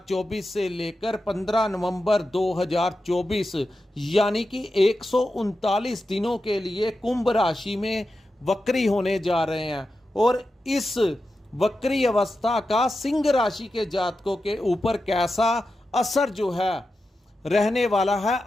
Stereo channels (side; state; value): both; normal; correlation 0.91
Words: से लेकर 15 नवंबर 2024 यानी कि 139 दिनों के लिए कुंभ राशि में वक्री होने जा रहे हैं। और इस वक्री अवस्था का सिंह राशि के जातकों के ऊपर कैसा असर जो है रहने वाला है,